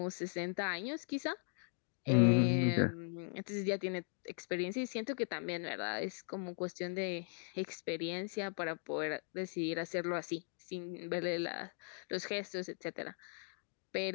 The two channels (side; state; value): right; silent; 52 dB below the other